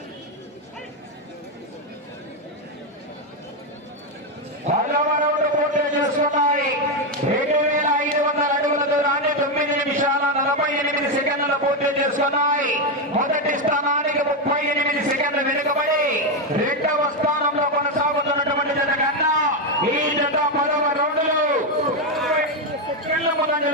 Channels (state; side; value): normal; both; correlation 0.06